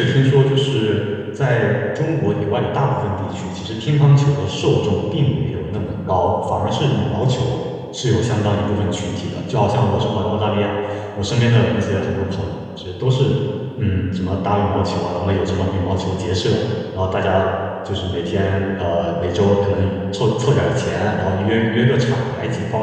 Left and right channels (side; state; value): both; identical; correlation 1.00